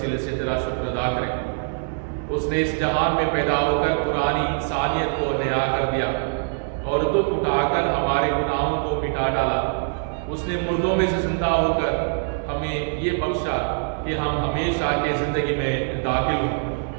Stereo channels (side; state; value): left; silent; digital silence